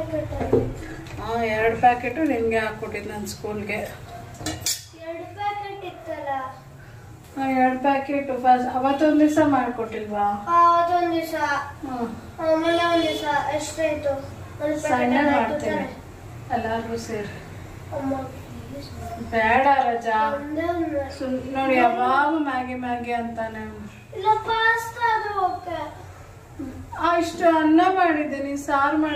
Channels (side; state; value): both; identical; correlation 1.00